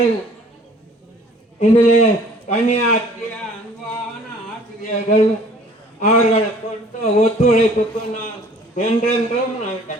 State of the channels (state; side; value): normal; both; correlation 0.53